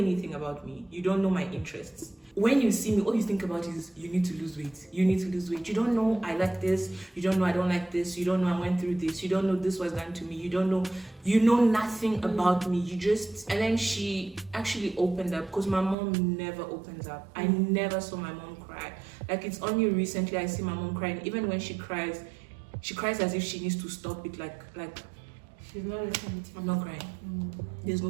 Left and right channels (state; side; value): drops out; left; at 16.0 s